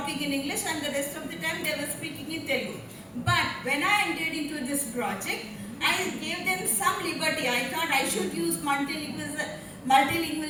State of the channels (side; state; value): both; identical; correlation 1.00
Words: in English, and the rest of the time they were speaking in Telugu. But when I entered into this project, I gave them some liberty. I thought I should use